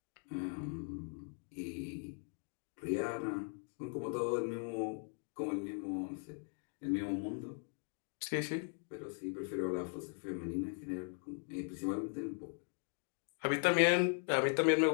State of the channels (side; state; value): right; silent; 52 dB below the other